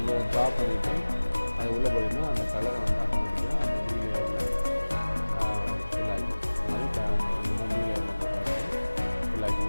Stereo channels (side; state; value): both; inverted; correlation -1.00